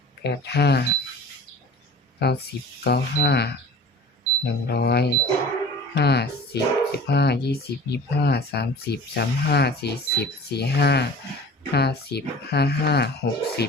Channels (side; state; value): both; normal; correlation 0.41